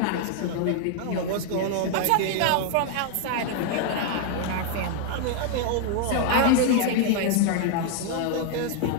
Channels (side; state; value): both; different; correlation 0.00